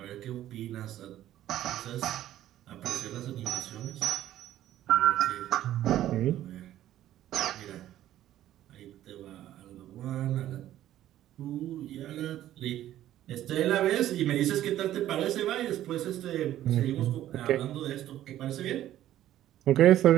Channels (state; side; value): quieter; left; 12.9 dB